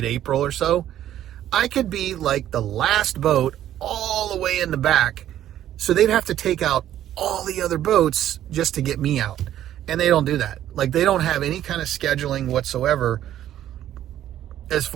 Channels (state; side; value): quieter; left; 11.9 dB